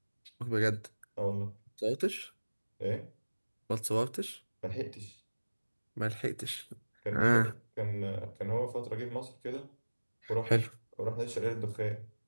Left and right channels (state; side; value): inverted; both; correlation -1.00